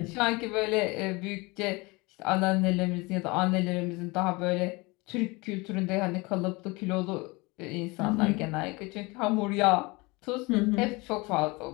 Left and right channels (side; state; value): right; quieter; 25.0 dB